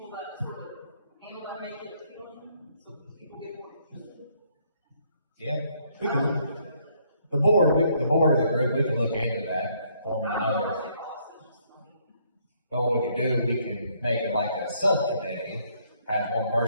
people that sort of handle that, make it appeal, so people get more interested. Yeah, we can, the board of the group, we can look into that, forming another. But what we can do, we can make it like a subcommittee, have one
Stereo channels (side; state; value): both; inverted; correlation -0.68